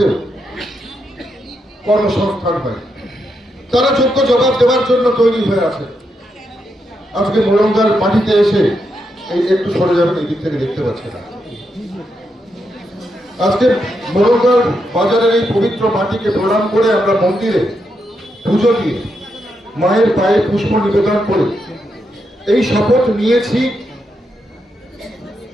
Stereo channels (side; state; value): both; normal; correlation 0.82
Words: কর্মসংস্থান হয়, তারা যোগ্য জবাব দেওয়ার জন্য তৈরি হয়ে আছে। আজকে মোরাঙ্গার মাটিতে এসে এই একটু সরে যাবেন, এই দিক থেকে দেখতে পাচ্ছে না। আজকে মোরাঙ্গার বাজারের এই পবিত্র মাটিকে প্রণাম করে আমরা মন্দিরে পুজো দিয়ে মায়ের পায়ে পুষ্প নিবেদন করে এই শপথ নিয়েছি